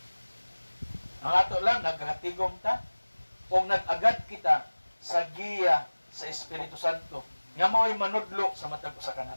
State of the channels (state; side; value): inverted; both; correlation -1.00